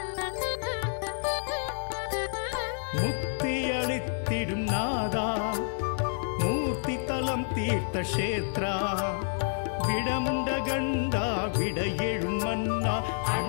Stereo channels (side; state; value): right; silent; 59 dB below the other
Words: முக்தி அளித்திடும் நாதா மூர்த்தி தலம் தீர்த்த கஷேத்ரா விடமுண்ட கண்டா விட எழும் மன்னா